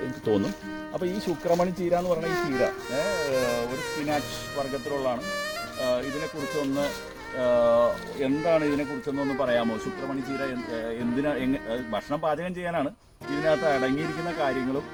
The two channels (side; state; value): both; identical; correlation 1.00